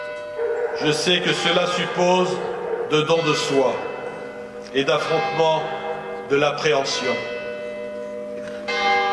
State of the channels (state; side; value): identical; both; correlation 1.00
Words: je sais que cela suppose de don de soi et d'affrontement de l'appréhension.